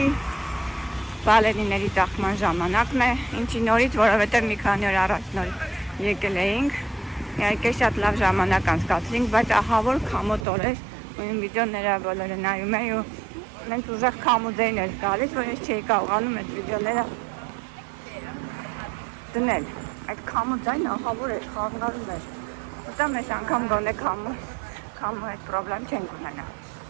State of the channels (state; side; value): drops out; left; at 10.5 s